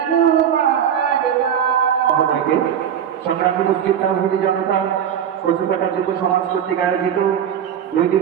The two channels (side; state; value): left; quieter; 9.0 dB